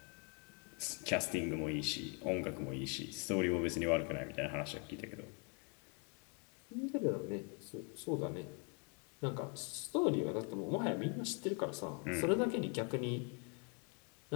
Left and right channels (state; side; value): quieter; right; 36.0 dB